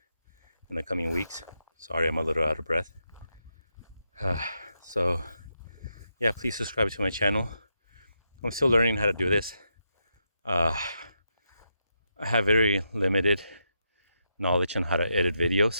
in the coming weeks. Sorry, I'm a little out of breath. So yeah, please subscribe to my channel. I'm still learning how to do this. I have very limited knowledge on how to edit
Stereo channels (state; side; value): inverted; both; correlation -0.83